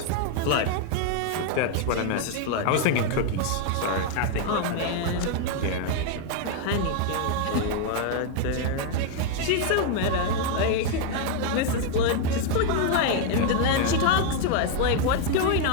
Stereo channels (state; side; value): different; both; correlation 0.01